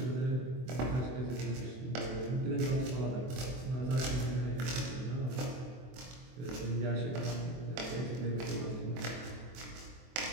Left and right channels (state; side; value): late; left; 24 ms